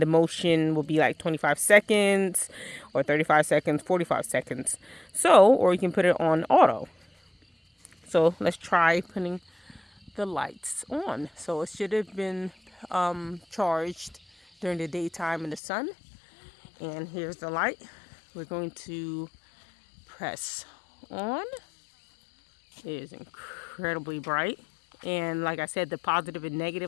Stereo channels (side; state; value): right; drops out; at 15.6 s